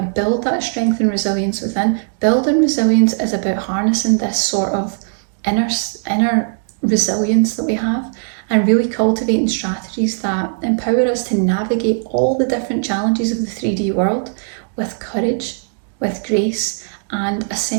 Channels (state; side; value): silent; left; digital silence